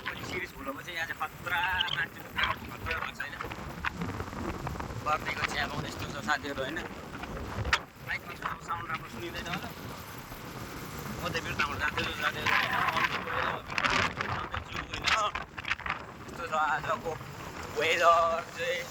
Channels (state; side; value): identical; both; correlation 1.00